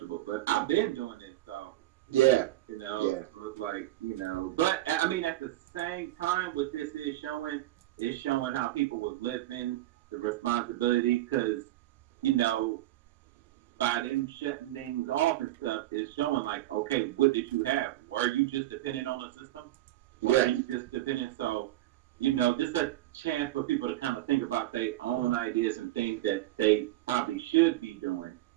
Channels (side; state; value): left; quieter; 15.5 dB